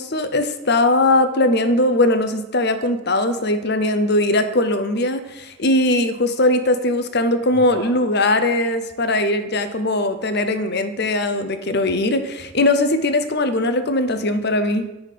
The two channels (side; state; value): both; normal; correlation -0.04